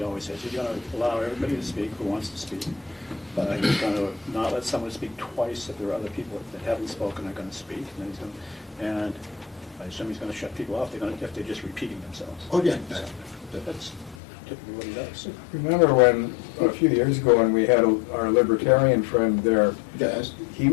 always has. He's going to allow everybody to speak who wants to speak, but he's going to not let someone speak twice if there are other people that haven't spoken are going to speak. And then he's going to, and I assume he's going to shut people off if they're just repeating themselves. Oh, yeah. That's typically what he does. Remember when, a few years ago, when we had our libertarian friend there, Yes. he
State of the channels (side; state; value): right; drops out; at 14.2 s